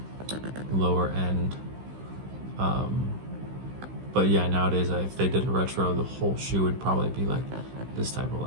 lower end. But yeah, nowadays if they did a retro, the whole shoe would probably be like this type of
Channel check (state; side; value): late; left; 15 ms